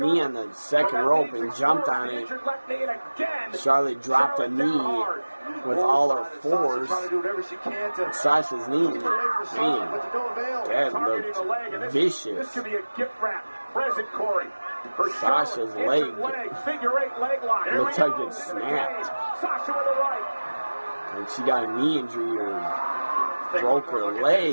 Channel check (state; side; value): inverted; both; correlation -1.00